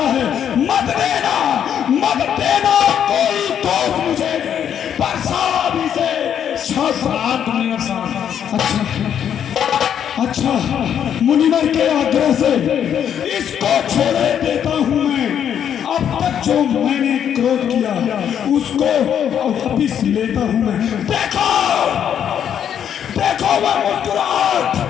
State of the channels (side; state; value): right; quieter; 9.0 dB